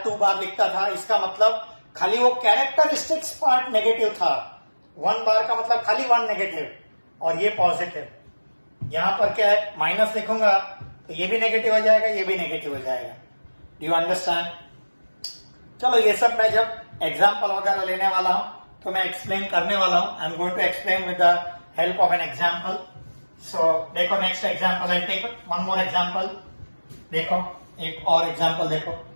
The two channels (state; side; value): inverted; both; correlation -1.00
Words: 2 बार लिखता था, इसका मतलब खाली वो कैरेक्टरिस्टिक्स पार्ट नेगेटिव था। 1 बार का मतलब खाली 1 नेगेटिव और ये पॉजिटिव। यहां पर क्या है, माइनस लिखूंगा तो ये भी नेगेटिव हो जाएगा, ये भी नेगेटिव हो जाएगा। Do you understand? चलो ये सब मैं जब एग्जाम्पल वगैरह लेने वाला हूं तो मैं एक्सप्लेन करने वाला हूं। I am going to explain with the help of an example. So देखो next example, I take one more example. देखो एक और एग्जाम्पल देखो,